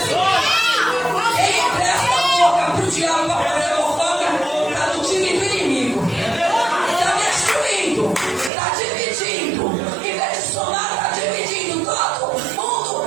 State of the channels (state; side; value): drops out; left; at 8.5 s